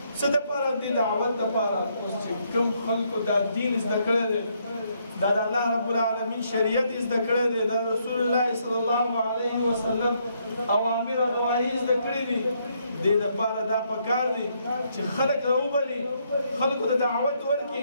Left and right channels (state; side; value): inverted; both; correlation -0.73